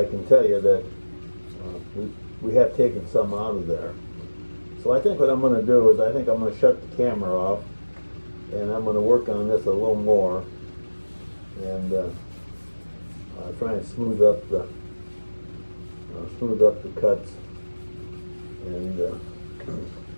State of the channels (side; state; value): both; inverted; correlation -1.00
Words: can tell you that we have taken some out of there. So I think what I'm going to do is I think I'm going to shut the camera off, and I'm going to work on this a little more, and try and smooth up the cuts, and